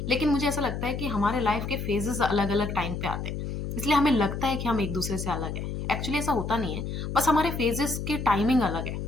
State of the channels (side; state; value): left; noise; hum, 5 dB below the sound